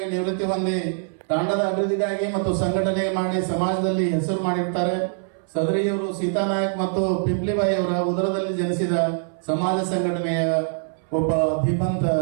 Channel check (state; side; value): silent; left; 61 dB below the other